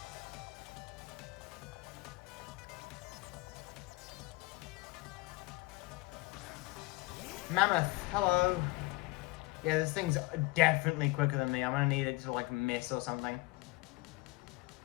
Mammoth, hello. Yeah, this thing's definitely quicker than me. I'm gonna need it to like miss or something.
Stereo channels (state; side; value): quieter; right; 21.5 dB